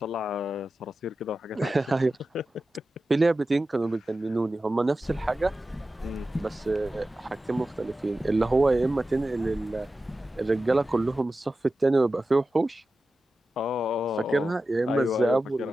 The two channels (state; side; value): normal; both; correlation 0.93